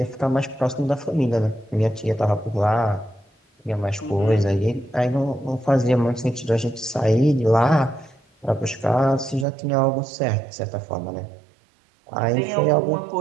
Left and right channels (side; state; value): left; drops out; at 9.5 s